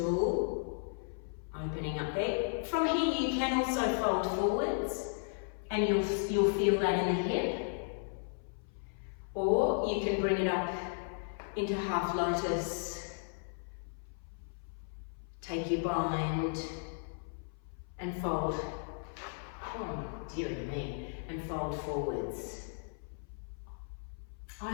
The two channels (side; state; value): right; silent; 54 dB below the other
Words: opening up there. From here you can also fold forwards and you'll feel that in the hip. Or you can bring it up into half lotus. Take your bind and fold. Oh dear me. And fold forwards.